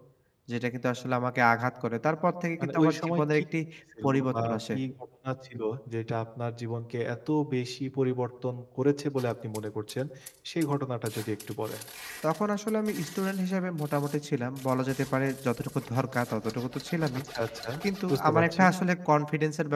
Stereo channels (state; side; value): identical; both; correlation 1.00